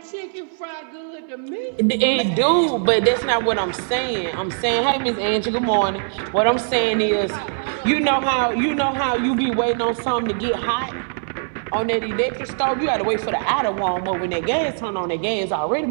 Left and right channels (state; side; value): silent; left; 65 dB below the other